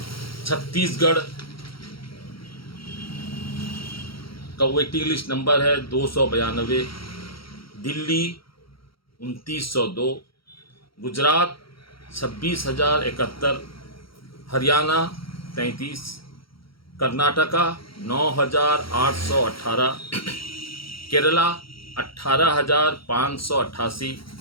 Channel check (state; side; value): late; right; 0.74 ms